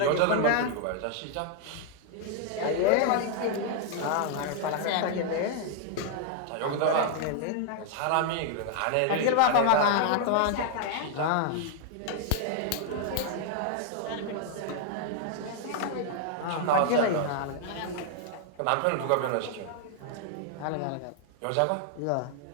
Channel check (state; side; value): different; both; correlation 0.00